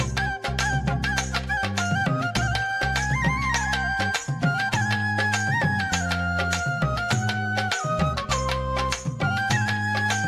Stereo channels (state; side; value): identical; both; correlation 1.00